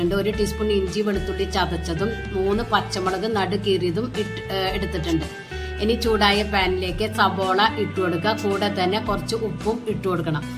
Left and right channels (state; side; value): identical; both; correlation 1.00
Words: 1 ടീസ്പൂൺ ഇഞ്ചി വെളുത്തുള്ളി ചതച്ചതും 3 പച്ചമുളക് നടുകീറിയതും എടുത്തിട്ടുണ്ട്. ഇനി ചൂടായ പാനിലേക്ക് സബോള ഇട്ടു കൊടുക്കുക. കൂടെ തന്നെ കുറച്ച് ഉപ്പും ഇട്ടു കൊടുക്കണം.